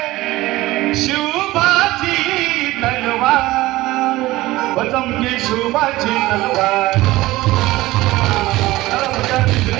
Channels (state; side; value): quieter; left; 18.2 dB